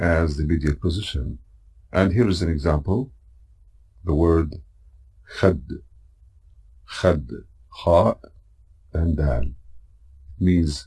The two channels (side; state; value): both; identical; correlation 1.00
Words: the medial position. And here is an example. The word Khad. Khad. Kha and Dal. Means